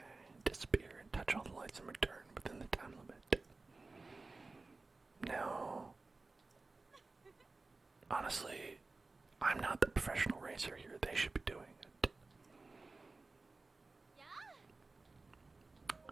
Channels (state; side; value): quieter; left; 3.6 dB